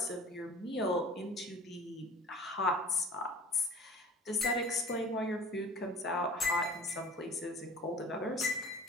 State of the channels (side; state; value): both; normal; correlation 0.43